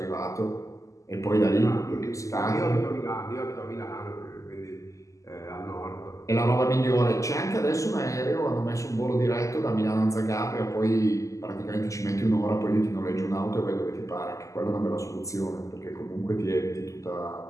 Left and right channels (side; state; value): right; late; 0.16 ms